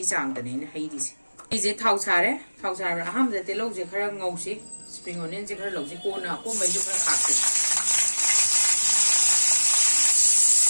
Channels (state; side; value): inverted; both; correlation -1.00